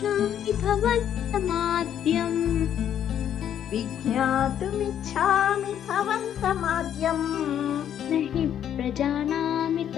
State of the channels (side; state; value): right; quieter; 9.8 dB